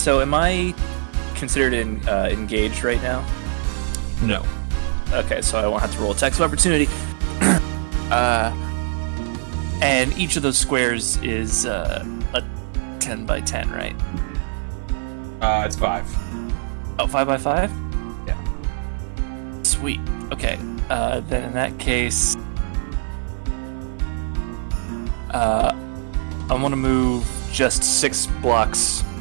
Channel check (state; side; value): silent; left; 57 dB below the other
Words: am I considered engaged right now? No. Okay, so I won't have to roll attacks of opportunity. And each of those squares is a 10 by 10, right? It's 5. Oh, 5 by 5? Yeah. Sweet. Okay. Then in that case, I want to move just 6 blocks